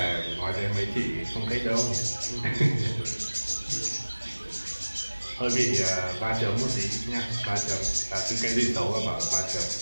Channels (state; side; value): inverted; both; correlation -1.00